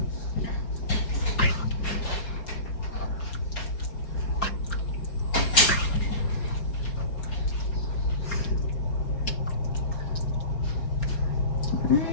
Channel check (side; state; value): right; late; 4.3 ms